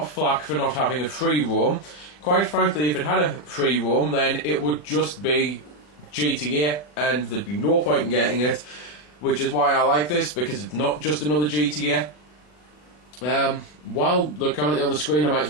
flack for not having a free roam. Quite frankly, if it had a free roam, then it would just be GTA and there'd be no point in getting it, which is why I like this, because it's not just another GTA. While they're currently on the screen, I might as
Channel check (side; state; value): right; late; 40 ms